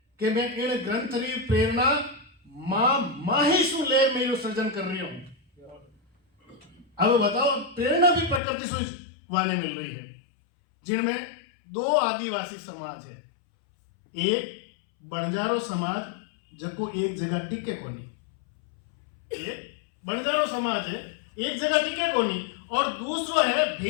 कि मैं इन ग्रंथ री प्रेरणा मां मैं यो सृजन कर रही हूं। अब बताओ, प्रेरणा भी प्रकृति से वाले मिल रही है, जिनमें दो आदिवासी समाज है। एक बंजारो समाज जको एक जगह टिके कोनी, एक बंजारो समाज है एक जगह टिके कोनी, और दूसरो है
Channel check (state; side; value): drops out; right; at 8.4 s